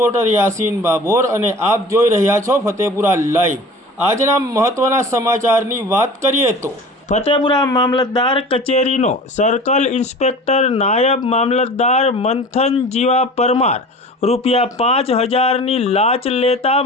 યાસીન બાબોર અને આપ જોઈ રહ્યા છો ફતેપુરા લાઈવ। આજના મહત્વના સમાચારની વાત કરીએ તો ફતેપુરા મામલતદાર કચેરીનો સર્કલ ઇન્સ્પેક્ટર નાયબ મામલતદાર મંથન જીવા પરમાર ₹5000ની લાંચ લેતા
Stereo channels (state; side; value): normal; both; correlation 0.40